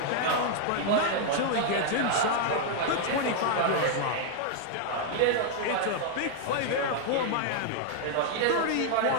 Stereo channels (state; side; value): different; both; correlation 0.00